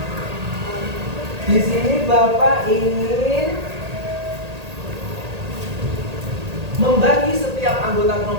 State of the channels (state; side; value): late; left; 1.8 ms